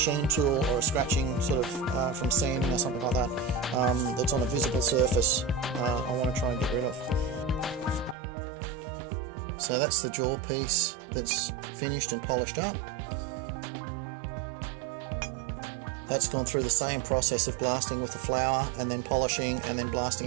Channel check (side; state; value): left; drops out; at 8.2 s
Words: tool or a scratching sort of from sanding or something like that, that's on a visible surface, I want to try and get rid of. So that's the jaw piece that's finished and polished up. That's gone through the same process of blasting with the flour and then polishing and then